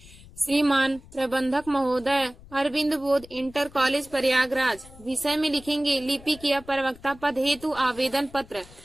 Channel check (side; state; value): left; noise; rumble, 21 dB below the sound